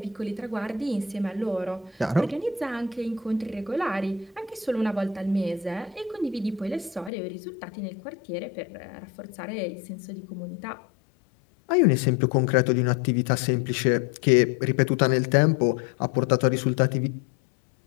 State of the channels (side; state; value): right; drops out; at 7.1 s